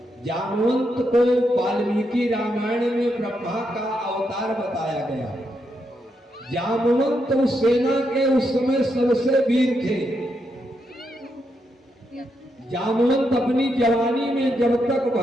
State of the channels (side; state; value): both; normal; correlation 0.81